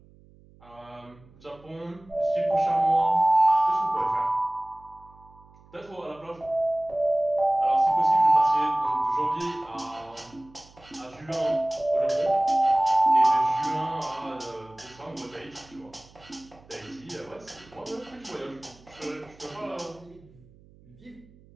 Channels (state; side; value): noise; right; hum, 26 dB below the sound